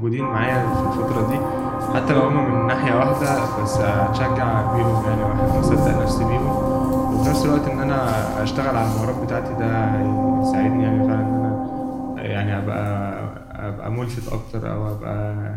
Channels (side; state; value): both; identical; correlation 1.00